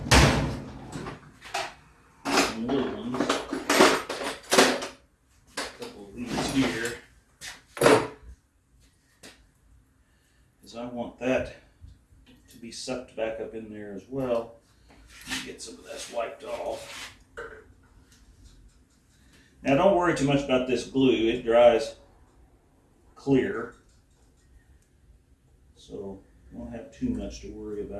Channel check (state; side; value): identical; both; correlation 1.00